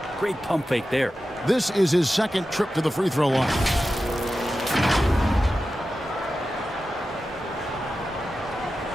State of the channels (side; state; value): both; normal; correlation 0.93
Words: Great pump fake there. This is his second trip to the free throw line.